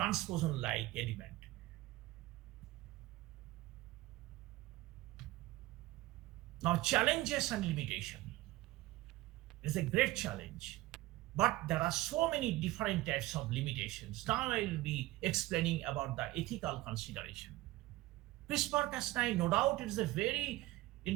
element. Now, challenges and limitation. It's a great challenge, but there are so many different types of limitations. Now I will be explaining about the ethical consideration. CRISPR-Cas9, no doubt, it is a very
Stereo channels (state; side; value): quieter; left; 18.0 dB